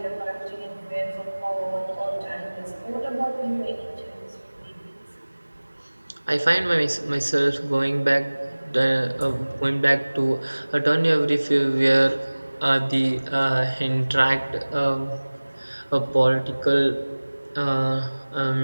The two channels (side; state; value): both; inverted; correlation -1.00